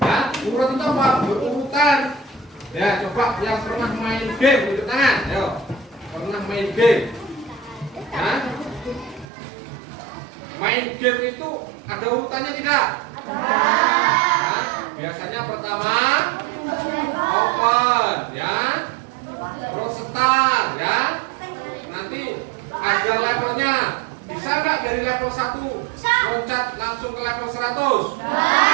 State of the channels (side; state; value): left; drops out; at 9.2 s